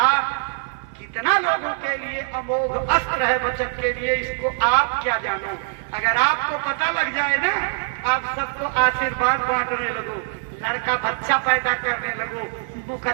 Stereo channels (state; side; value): silent; left; 64 dB below the other